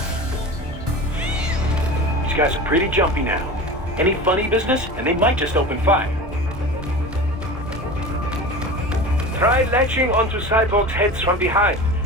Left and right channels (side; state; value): both; normal; correlation 0.32